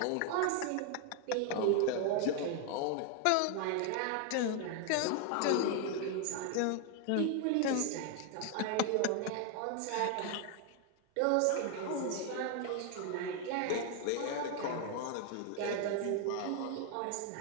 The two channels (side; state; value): both; different; correlation 0.01